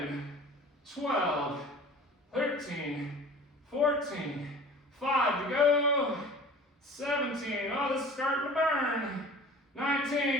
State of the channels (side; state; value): both; normal; correlation 0.43